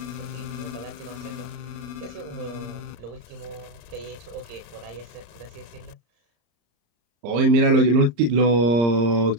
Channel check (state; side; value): late; left; 34 ms